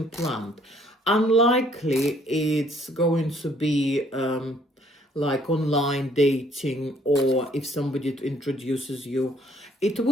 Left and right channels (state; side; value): normal; both; correlation 0.63